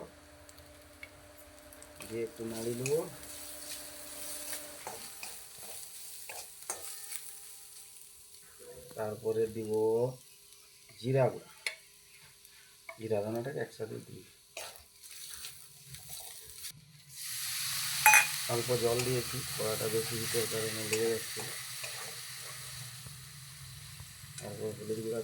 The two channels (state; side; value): identical; both; correlation 1.00